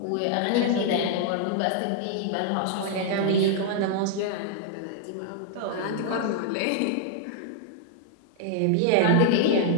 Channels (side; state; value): both; different; correlation 0.00